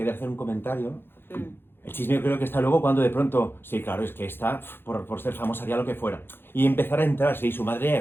hacer un comentario. El chisme yo creo que está luego cuando de pronto, sí, claro, es que está, por ser famosa haría lo que fuera. Y empezar a entrar, sí, su madre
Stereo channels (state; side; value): late; right; 0.10 ms